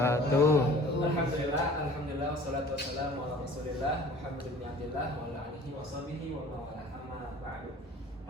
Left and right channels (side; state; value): both; normal; correlation 0.47